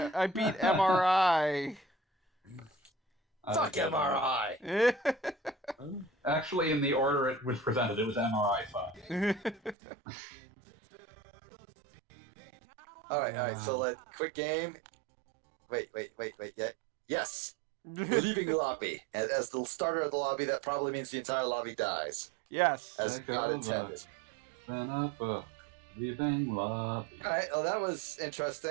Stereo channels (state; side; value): drops out; left; at 9.8 s